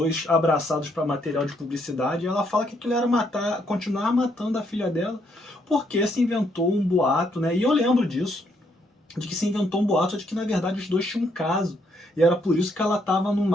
abraçados para material de publicidade, e ela fala que aquilo era continuar matando a filha dela, porque se inventou um boato, né? E eu lembro disso, de que se inventou um boato de que na verdade os dois tinham um caso, e era por isso que ela estava no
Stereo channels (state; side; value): normal; both; correlation 0.73